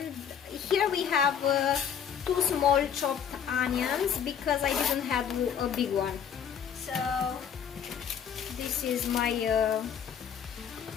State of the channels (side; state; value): right; quieter; 8.1 dB